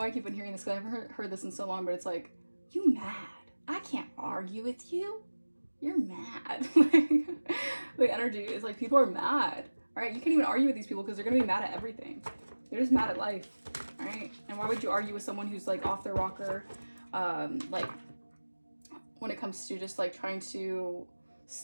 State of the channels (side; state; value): both; inverted; correlation -1.00